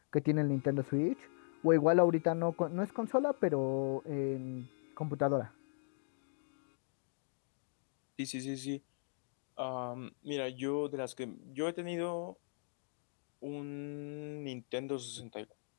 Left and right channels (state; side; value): silent; right; digital silence